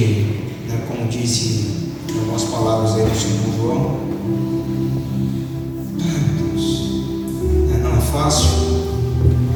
né, como disse algumas palavras aí do Senhor João, não é fácil.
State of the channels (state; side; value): identical; both; correlation 1.00